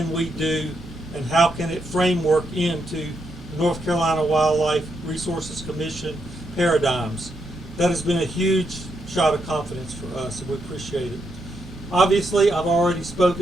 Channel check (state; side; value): normal; both; correlation 0.80